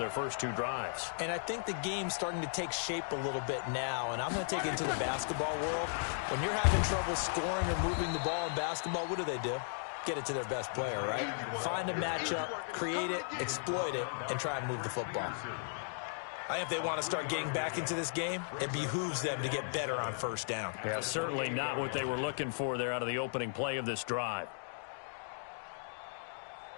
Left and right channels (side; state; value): right; silent; digital silence